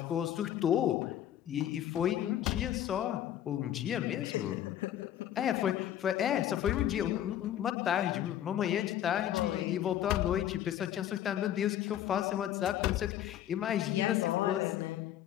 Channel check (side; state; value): right; quieter; 11.4 dB